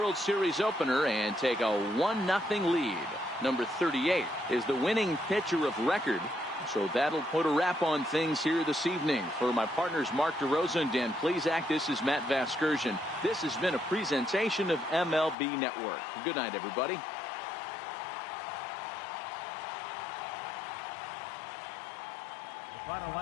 Series opener and take a 1-0 lead. Number 38 is the winning pitcher of record. So that'll put a wrap on things here this evening. For my partners Mark DeRosa and Dan Plesac, this is Matt Vasgersian. This has been a presentation of MLB Network. Good night, everybody. Final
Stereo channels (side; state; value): right; drops out; at 15.4 s